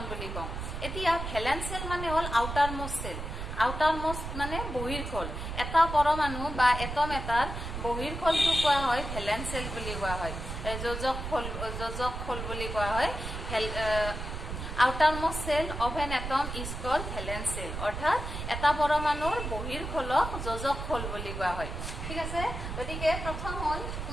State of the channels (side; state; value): right; noise; rumble, 6 dB below the sound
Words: বুলি কওঁ এতিয়া ভ্যালেন্স সেল মানে হল আউটাৰ মোস্ট মানে বহিৰ্খোল এটা পৰমাণু বা এটম এটাৰ বহিৰ্খোলটো কোৱা হয় ভ্যালেন্স সেল বুলি কোৱা হয় যোজক খোল বুলি কোৱা হয় outermost cell of an atom is called valence cell অৰ্থাৎ এটা পৰমাণুৰ বহিৰ্খোলক যোজক খোল বুলি কোৱা হয় ঠিক আছে গতিকে প্ৰথম হল